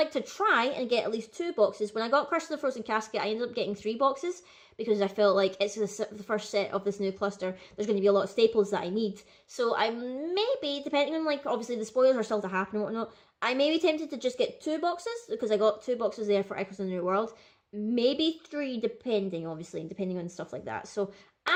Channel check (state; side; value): identical; both; correlation 1.00